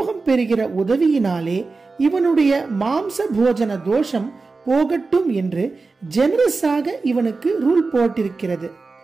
பெறுகிற உதவியினாலே இவனுடைய மாம்ச போஜன தோஷம் போகட்டும் என்று ஜெனரஸாக இவனுக்கு ரூல் போட்டிருக்கிறது.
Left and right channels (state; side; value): quieter; left; 4.0 dB